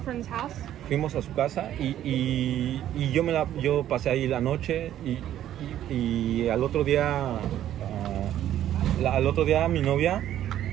house. Fuimos a su casa y yo pasé ahí la noche y al otro día mi novia,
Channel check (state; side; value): quieter; left; 11.8 dB